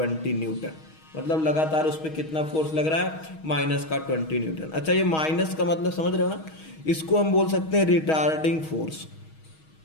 न्यूटन। मतलब लगातार उस पर कितना फोर्स लग रहा है? -20 न्यूटन। अच्छा, ये माइनस का मतलब समझ रहे हो ना? इसको हम बोल सकते हैं रिटार्डिंग फोर्स।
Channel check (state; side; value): late; right; 6.3 ms